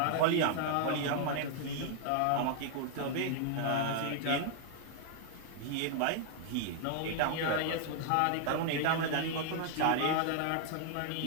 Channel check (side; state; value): both; different; correlation 0.00